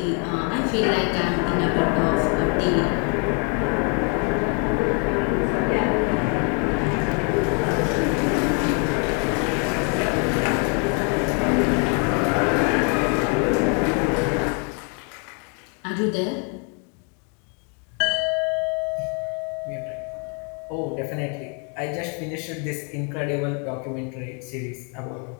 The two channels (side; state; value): right; quieter; 38.1 dB